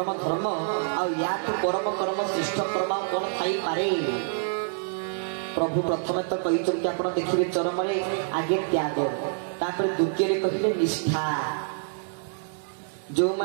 धर्म आ परम कर्म श्रेष्ठ कर्म कौन थी पारे प्रभु प्रथम तो कहते आप देखिए चरम आगे त्याग तापर द्वितीय कहले निष्ठा जो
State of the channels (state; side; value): silent; left; 60 dB below the other